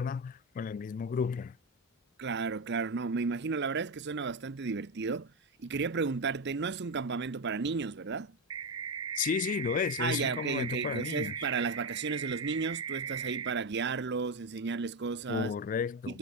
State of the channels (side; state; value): both; normal; correlation 0.11